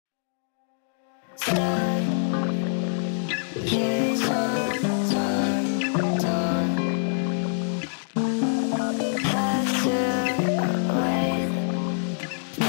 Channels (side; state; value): right; silent; digital silence